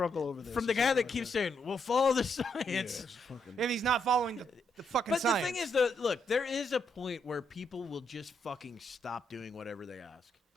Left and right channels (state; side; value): normal; both; correlation 0.77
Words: over this. From the or guy something that like keeps saying, "We'll follow the science." Yeah, it's fucking- If he's not following the fucking But science. the thing is, though, look, there is a point where people will just fucking stop doing whatever they ask.